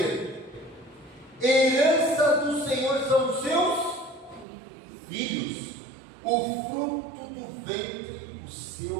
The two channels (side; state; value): left; drops out; at 4.5 s